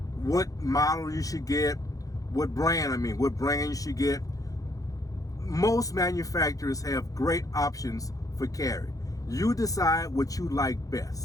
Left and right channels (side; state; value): right; late; 0.17 ms